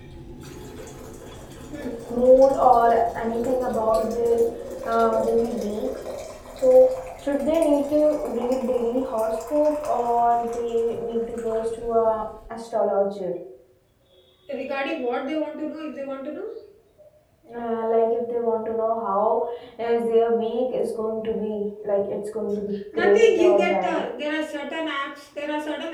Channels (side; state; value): both; identical; correlation 1.00